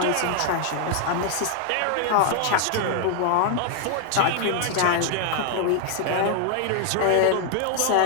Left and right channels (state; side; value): different; both; correlation 0.00